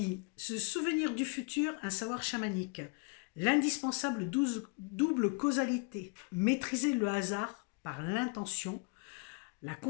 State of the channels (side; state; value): right; quieter; 31.4 dB